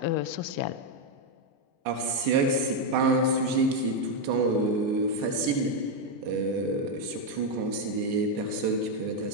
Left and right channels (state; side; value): late; left; 14 ms